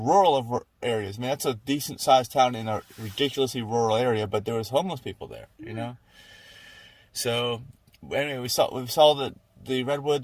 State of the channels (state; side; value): identical; both; correlation 1.00